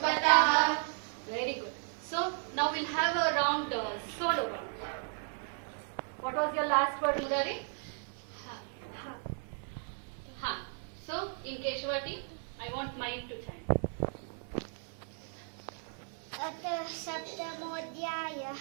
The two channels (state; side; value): silent; left; 54 dB below the other